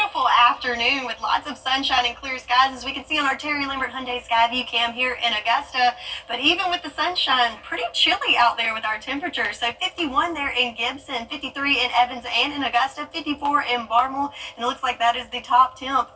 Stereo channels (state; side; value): identical; both; correlation 1.00